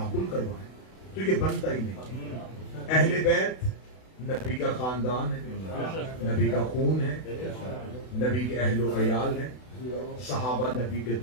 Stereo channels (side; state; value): right; late; 32 ms